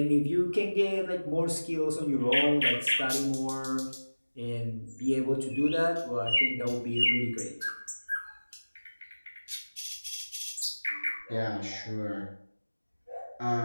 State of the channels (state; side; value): inverted; both; correlation -1.00